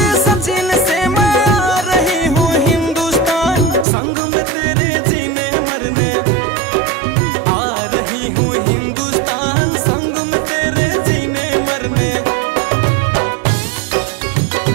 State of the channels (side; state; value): left; drops out; at 3.9 s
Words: सचिन से मैं आ रही हूँ हिंदुस्तान, संग में तेरे जीने मरने। आ रही हूँ हिंदुस्तान, संग में तेरे जीने मरने।